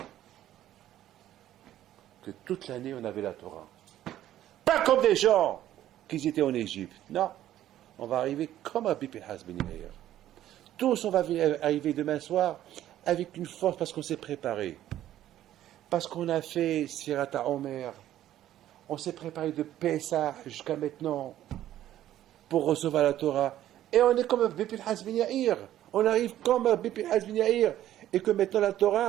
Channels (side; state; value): left; quieter; 12.6 dB